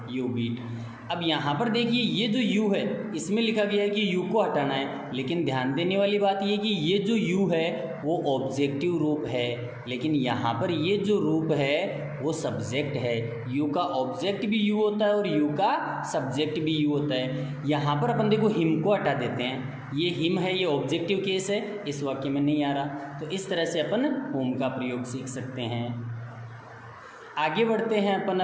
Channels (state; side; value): identical; both; correlation 1.00